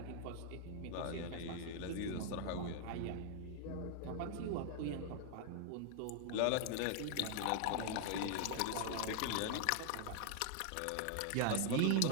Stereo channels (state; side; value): different; both; correlation 0.00